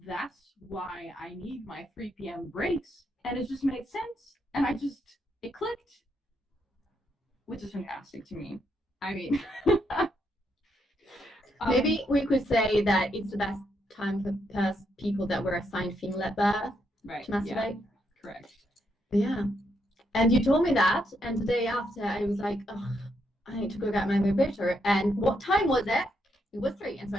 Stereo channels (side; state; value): both; normal; correlation 0.78